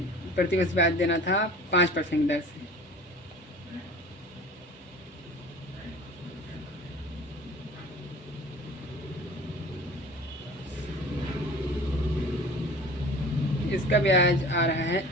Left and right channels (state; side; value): normal; both; correlation 0.42